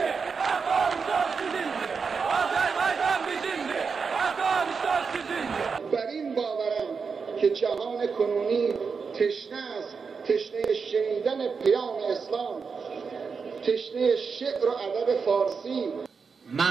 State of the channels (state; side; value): quieter; left; 5.4 dB